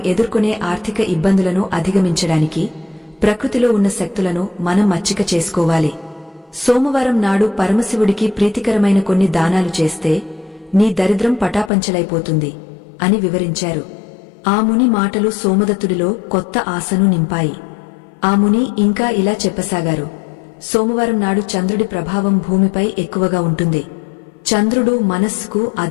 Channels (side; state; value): right; drops out; at 11.7 s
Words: ఎదుర్కొనే ఆర్థిక ఇబ్బందులను అధిగమించడానికి ప్రకృతిలో ఉన్న శక్తులను మనం మచ్చిక చేసుకోవాలి. సోమవారం నాడు పరమశివుడికి ప్రీతికరమైన కొన్ని దానాలు చేస్తే నీ దరిద్రం పటాపంచలైపోతుంది అని వివరించారు. ఆ ముని మాటలు సోమదత్తుడిలో కొత్త ఆశను నింపాయి. ఆ ముని ఇంకా ఇలా చెప్పసాగారు, సోమవారం నాడు చంద్రుడి ప్రభావం భూమిపై ఎక్కువగా ఉంటుంది. చంద్రుడు మనస్సుకు